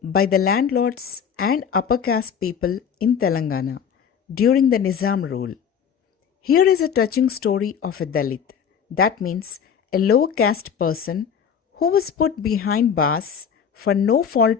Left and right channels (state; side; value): quieter; right; 7.5 dB